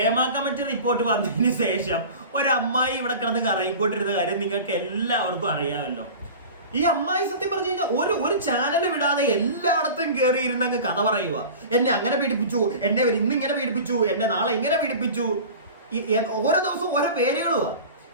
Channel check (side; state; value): both; inverted; correlation -0.36